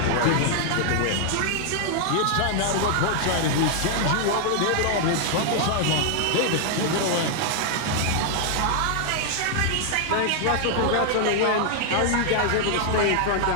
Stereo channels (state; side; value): different; both; correlation 0.00